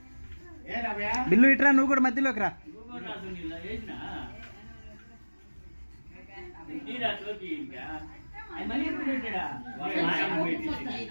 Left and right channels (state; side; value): inverted; both; correlation -1.00